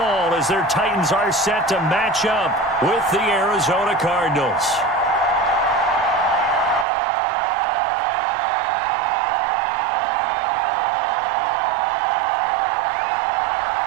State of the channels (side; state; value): left; drops out; at 6.9 s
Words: as their Titans are set to match up with the Arizona Cardinals.